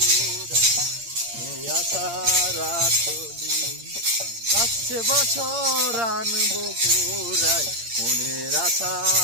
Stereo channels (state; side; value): late; left; 8.7 ms